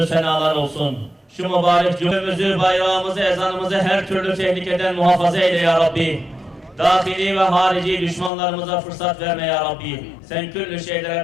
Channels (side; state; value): right; drops out; at 8.3 s